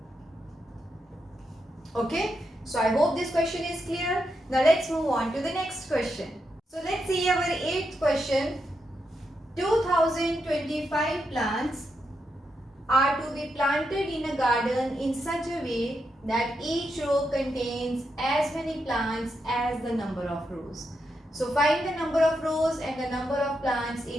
Okay. So I hope this question is clear. Now let's move on to the next question. So let's see our 8th question. 2025 plants are to be planted in a garden in such a way that each row contains as many plants as the number of rows. So find the number of rows and the number of plants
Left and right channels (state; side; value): normal; both; correlation 0.84